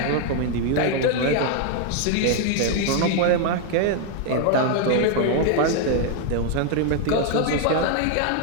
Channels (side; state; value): both; different; correlation 0.01